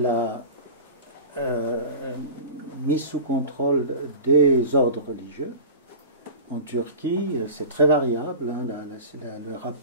mise sous contrôle des ordres religieux. En Turquie, c'est très variable. Hein, le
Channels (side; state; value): both; inverted; correlation -0.34